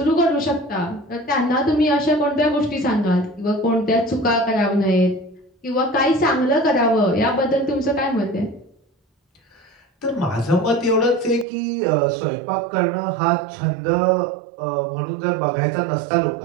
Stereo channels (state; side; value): drops out; left; at 11.5 s